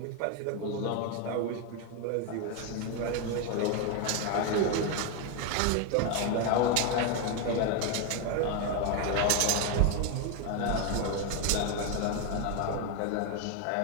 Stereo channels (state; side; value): different; both; correlation 0.01